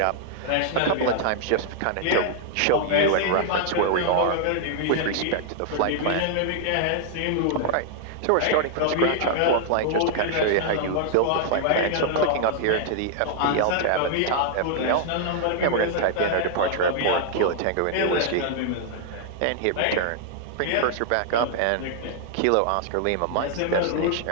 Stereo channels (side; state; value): both; different; correlation -0.01